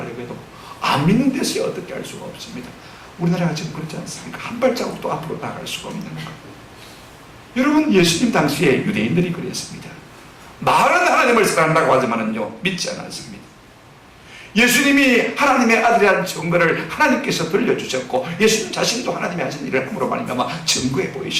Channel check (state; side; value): identical; both; correlation 1.00